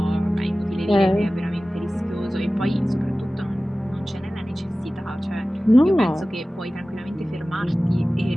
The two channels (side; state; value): both; normal; correlation 0.97